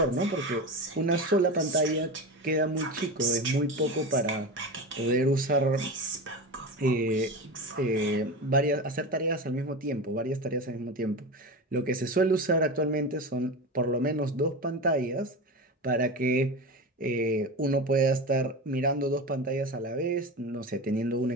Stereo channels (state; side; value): normal; both; correlation 0.24